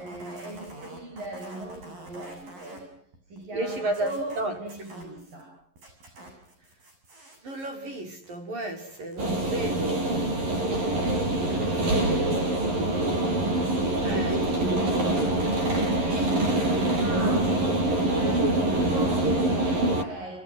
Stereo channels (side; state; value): left; late; 11 ms